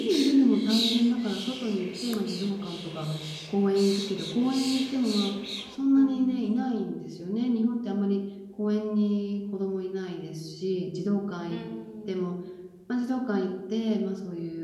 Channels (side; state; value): both; identical; correlation 1.00